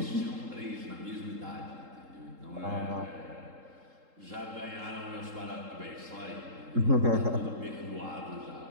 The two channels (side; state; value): left; late; 3.7 ms